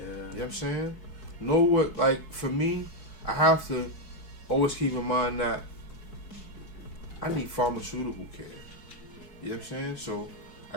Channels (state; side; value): late; right; 4.6 ms